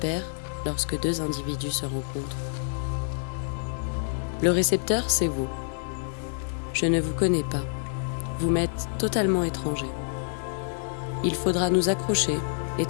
lorsque deux individus se rencontrent? Le récepteur, c'est vous. Je ne vous connais pas. Vous m'êtes totalement étranger. Il faudra nous accrocher et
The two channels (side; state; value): right; silent; 60 dB below the other